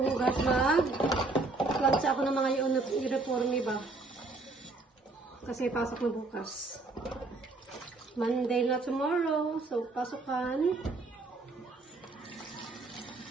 hugas, mag-lunch ako ng mga uniforme ba. Kasi pasok na bukas. Monday na tomorrow. So, pasukan.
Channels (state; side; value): quieter; left; 3.4 dB